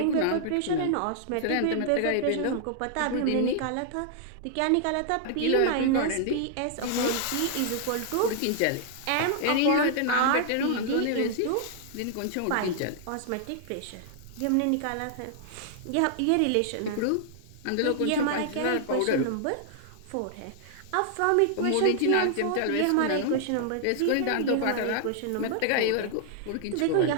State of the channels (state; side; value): different; both; correlation -0.01